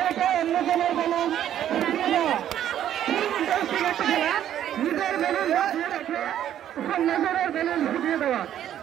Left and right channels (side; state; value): left; quieter; 10.9 dB